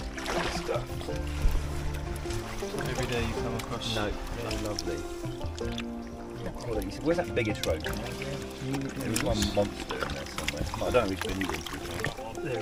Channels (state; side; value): identical; both; correlation 1.00